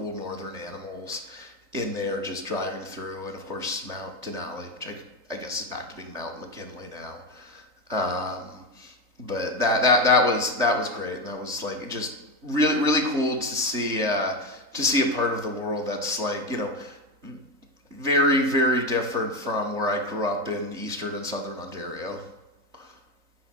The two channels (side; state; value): left; late; 3.9 ms